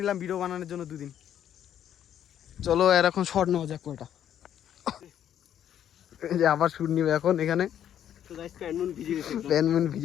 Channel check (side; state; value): right; quieter; 10.2 dB